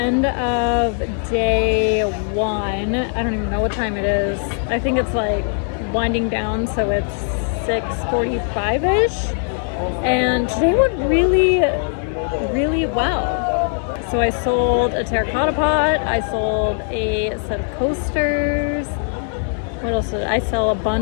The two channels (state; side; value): silent; right; 57 dB below the other